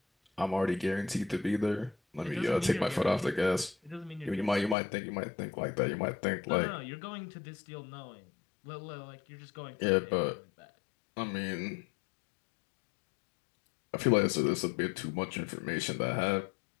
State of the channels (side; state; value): right; drops out; at 4.8 s